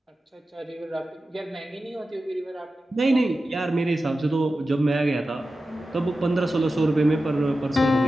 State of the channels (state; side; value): normal; both; correlation 0.93